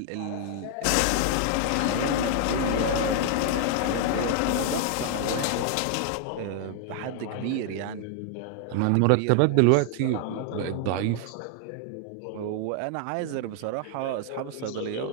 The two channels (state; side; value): different; both; correlation 0.00